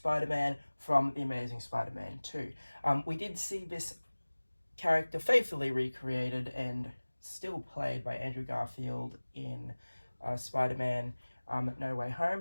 from The Amazing Spider-Man 2. We did see this character faithfully recreated and still played by Andrew Garfield in Spider-Man No Way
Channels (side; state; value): both; inverted; correlation -1.00